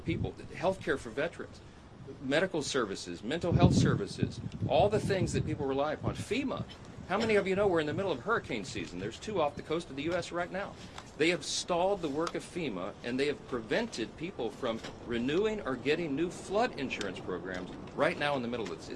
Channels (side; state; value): both; identical; correlation 1.00